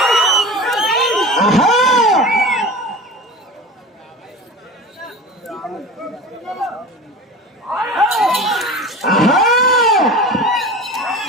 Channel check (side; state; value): both; normal; correlation 0.34